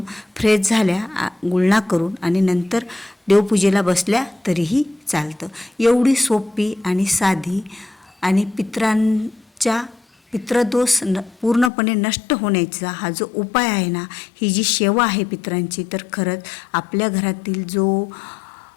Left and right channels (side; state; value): right; drops out; at 11.7 s